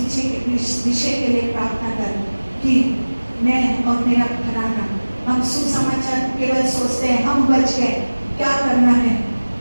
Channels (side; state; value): both; inverted; correlation -1.00